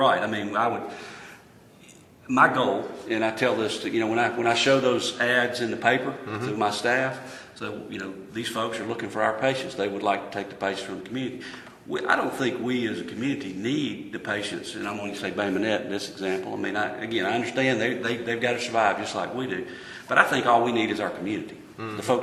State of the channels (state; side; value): identical; both; correlation 1.00